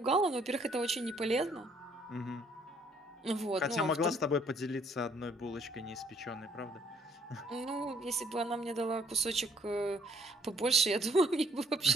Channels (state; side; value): normal; both; correlation 0.64